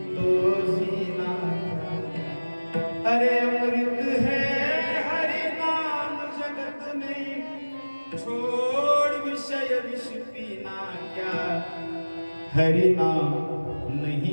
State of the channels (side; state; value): both; inverted; correlation -1.00